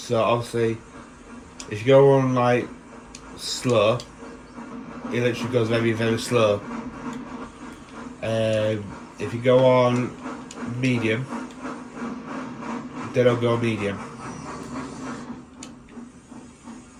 obviously, if you go on like slow, it literally goes very, very slow. If you go on medium, they don't go medium.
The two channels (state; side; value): identical; both; correlation 1.00